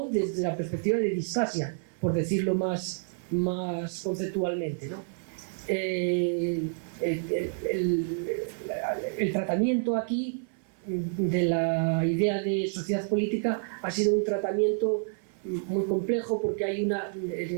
desde la perspectiva de distasia, por decirlo más conceptualmente, ¿no? El tratamiento aquí de la idea de sociedad política ha sido un tratamiento muy complejo, porque en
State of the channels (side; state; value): left; silent; 56 dB below the other